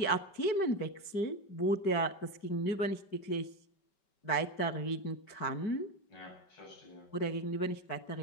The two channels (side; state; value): right; late; 5.2 ms